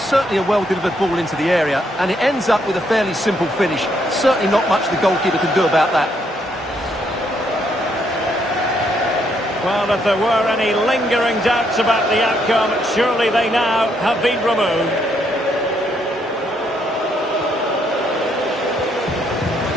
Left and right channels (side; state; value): both; normal; correlation 0.73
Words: certainly a well-delivered ball into the area, and it ends up with a fairly simple finish. Certainly not much the goalkeeper can do about that. Well, if there were any lingering doubts about the outcome, surely they now have been removed.